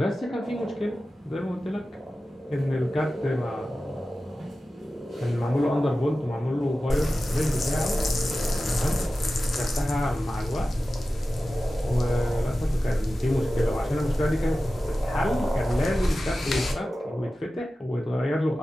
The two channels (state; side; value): normal; both; correlation 0.94